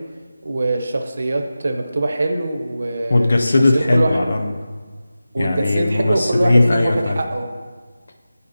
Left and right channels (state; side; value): inverted; both; correlation -0.94